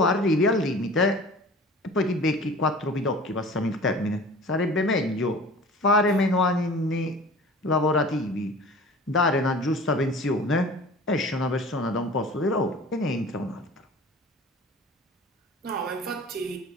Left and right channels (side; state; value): both; normal; correlation 0.42